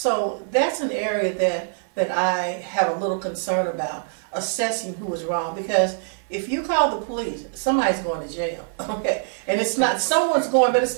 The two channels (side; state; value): left; silent; digital silence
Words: that's an area that I have a little concern about, assessing who was wrong, because if you call the police, somebody's going to jail, okay? And it's not, someone's going, but it's